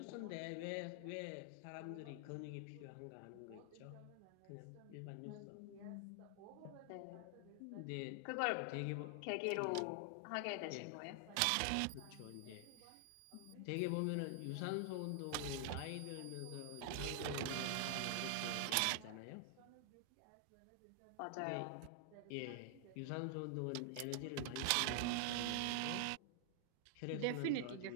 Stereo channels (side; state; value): both; different; correlation 0.00